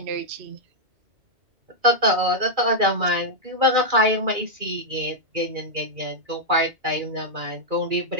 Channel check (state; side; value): late; left; 2.3 ms